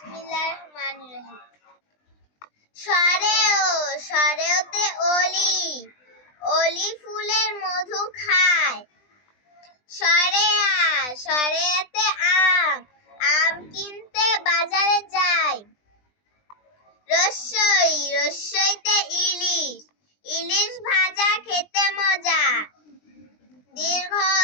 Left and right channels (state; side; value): late; right; 20 ms